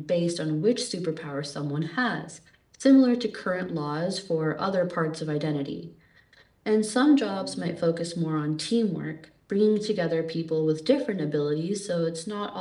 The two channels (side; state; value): both; identical; correlation 1.00